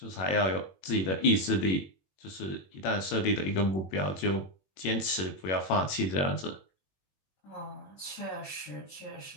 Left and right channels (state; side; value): late; right; 21 ms